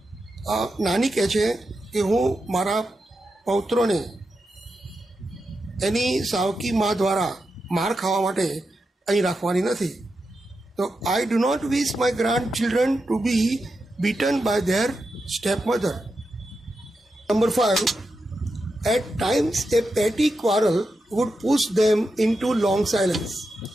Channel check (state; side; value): normal; both; correlation 0.88